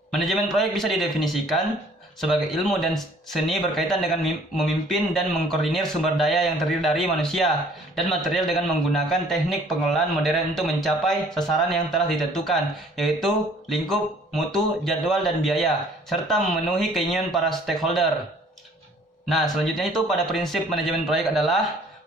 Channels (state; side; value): normal; both; correlation 0.56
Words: Manajemen proyek bisa didefinisikan sebagai ilmu dan seni berkaitan dengan memimpin dan mengkoordinir sumber daya yang terdiri dari manusia dan material dengan menggunakan teknik pengelolaan modern untuk mencapai sasaran yang telah ditentukan, yaitu lingkup, mutu, jadwal, dan biaya, serta memenuhi keinginan para stakeholder. Nah, selanjutnya itu pada prinsip manajemen proyek adalah